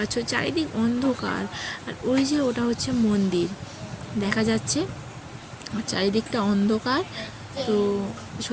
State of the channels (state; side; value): identical; both; correlation 1.00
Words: চারিদিক অন্ধকার। আর ওই যে ওটা হচ্ছে মন্দির দেখা যাচ্ছে, আর চারিদিকটা অন্ধকার। তো